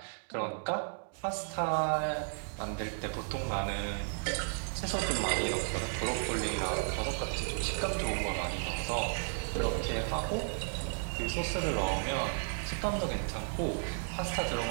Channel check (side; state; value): left; silent; 55 dB below the other